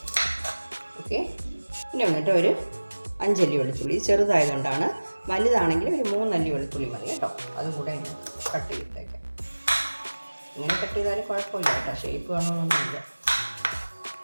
ഓക്കെ, ഇനി വന്നിട്ട് ഒരു 5 അല്ലി വെളുത്തുള്ളി, ചെറുതായതുകൊണ്ടാണ്. വലുതാണെങ്കിൽ ഒരു 3 അല്ലി വെളുത്തുള്ളി മതി കേട്ടോ. അതും കൂടെ കട്ട് ചെയ്തിട്ടേക്കാം. ഇങ്ങനെ കട്ട് ചെയ്താലും കുഴപ്പമില്ല കേട്ടോ, ഷേപ്പ് വേണമെന്നൊന്നുമില്ല.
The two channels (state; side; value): inverted; both; correlation -1.00